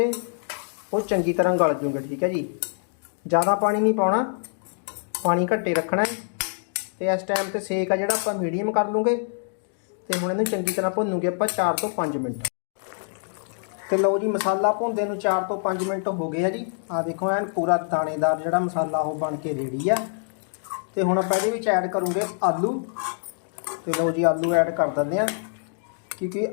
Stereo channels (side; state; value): right; silent; digital silence